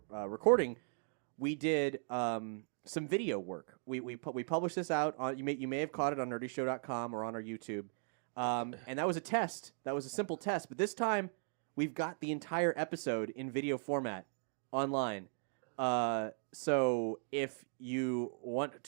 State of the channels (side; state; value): left; silent; 52 dB below the other